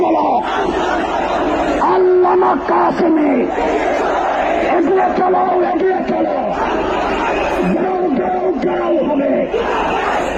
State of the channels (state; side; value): identical; both; correlation 1.00